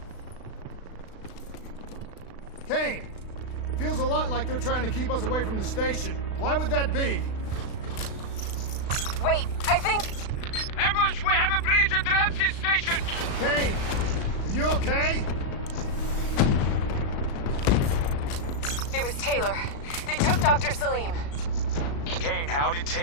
Kane! Feels a lot like they're trying to keep us away from the station. Why would that be? Wait, I think... Ambush! We have a breach at Ramses Station! Kane! Are you okay? It was Taylor. They took Dr. Salim. Kane, how did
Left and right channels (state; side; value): late; right; 36 ms